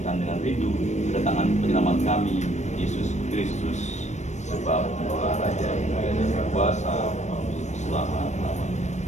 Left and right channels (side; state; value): right; late; 0.34 ms